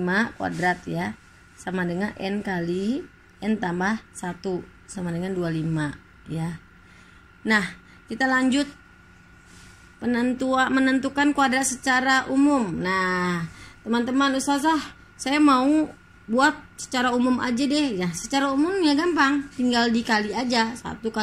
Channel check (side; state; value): both; identical; correlation 1.00